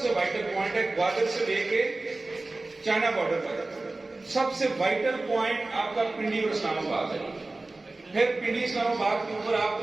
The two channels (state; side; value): quieter; left; 3.1 dB